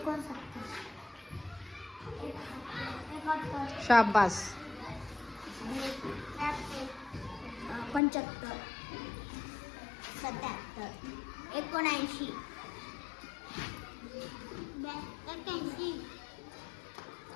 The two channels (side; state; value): right; drops out; at 8.0 s